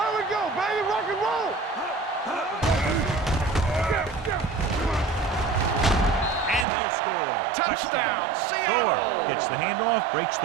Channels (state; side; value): drops out; left; at 6.7 s